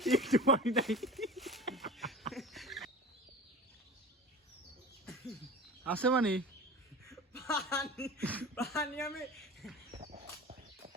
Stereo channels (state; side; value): normal; both; correlation 0.36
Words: একটু পানি নাই। আছে মানে পানি পানি আমি